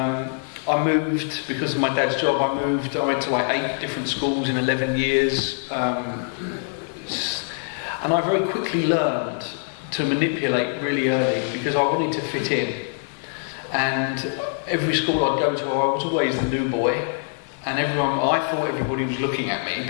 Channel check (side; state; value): right; silent; 63 dB below the other